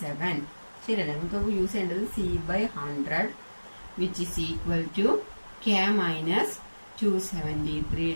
ശരിയല്ലേ? നമുക്ക് യൂസ് ചെയ്യേണ്ടത് C/100 which is equal to K minus 273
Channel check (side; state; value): both; inverted; correlation -1.00